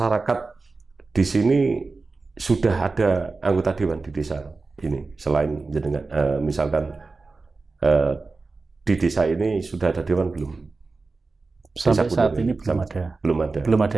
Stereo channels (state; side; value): quieter; left; 3.9 dB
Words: di sini sudah ada anggota dewan di desa ini selain jenengan, misalkan di desa ini sudah ada dewan belum? Sampai saat ini belum